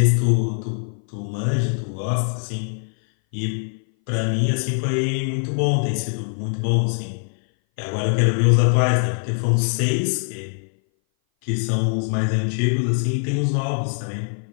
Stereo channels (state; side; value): silent; right; 59 dB below the other